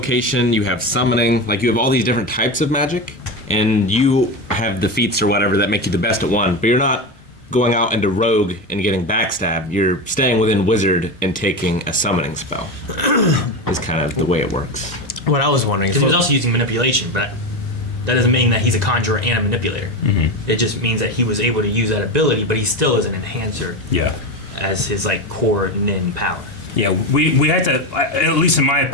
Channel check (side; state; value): both; normal; correlation 0.19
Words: you have summoning, like you have all these different types of magic, and you have the feats or whatever that make you the best at one, but you're not going out into rogue and getting backstab. You're staying within wizard and taking a summoning spell. Is kind of the way it works. What I was wondering. Because he was also using manipulation, but that doesn't mean that he's a conjurer and a manipulator. It just means that he was able to use that ability, but he still is an enhancer Yeah. as his like core nin power. Yeah, we had to, at least in my